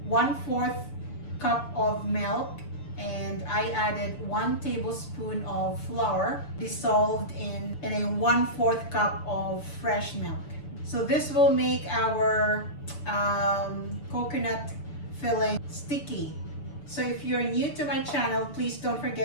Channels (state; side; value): late; right; 6.9 ms